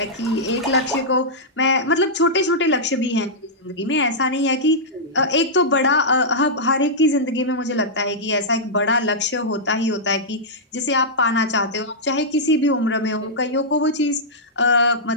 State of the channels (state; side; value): normal; both; correlation -0.10